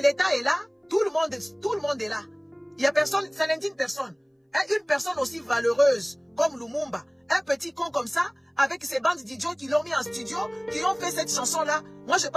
l'État est là, tout le monde est là. Il y a personne, ça n'indigne personne. Et une personne aussi valeureuse comme Lumumba, un petit con comme ça, avec ces bandes d'idiots qui l'ont mis en studio, qui ont fait cette chanson-là. Moi, je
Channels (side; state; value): both; identical; correlation 1.00